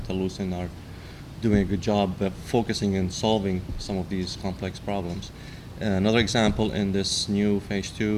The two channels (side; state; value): both; identical; correlation 1.00